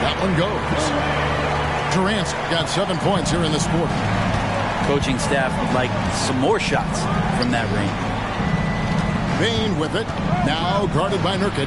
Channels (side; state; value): both; identical; correlation 1.00